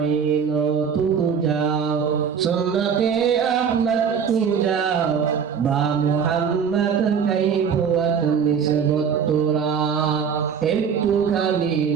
তু যাও, সুন্নতে আহমদ তু যাও, বা মুহাম্মদ কাইবুয়াত নিসবত তোরা। একটুখানি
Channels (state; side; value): quieter; left; 7.0 dB